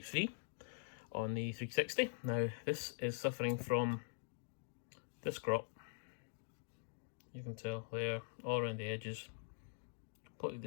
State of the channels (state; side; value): silent; right; digital silence